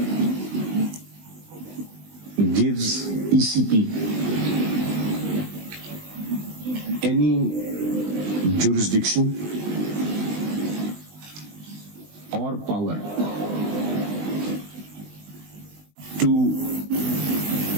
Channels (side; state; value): left; late; 20 ms